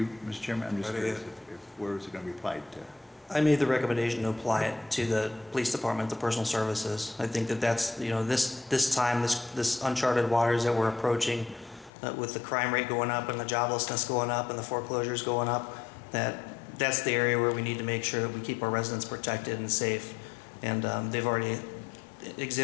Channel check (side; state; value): right; drops out; at 11.9 s